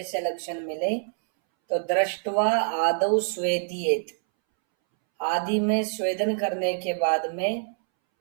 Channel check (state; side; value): silent; left; 61 dB below the other